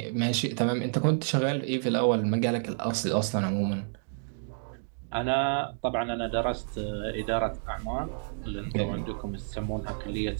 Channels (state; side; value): silent; left; digital silence